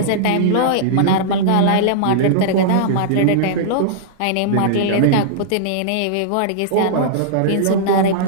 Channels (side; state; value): both; different; correlation -0.02